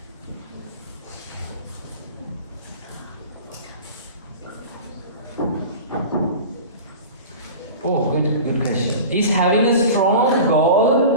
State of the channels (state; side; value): inverted; both; correlation -0.35